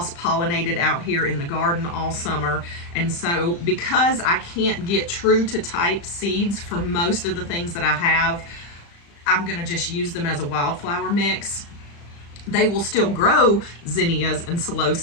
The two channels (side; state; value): right; late; 35 ms